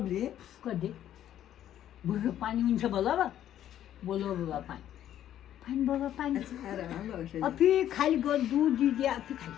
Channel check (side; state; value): right; quieter; 11.4 dB